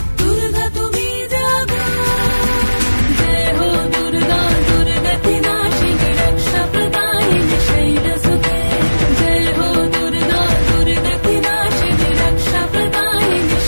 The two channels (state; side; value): inverted; both; correlation -1.00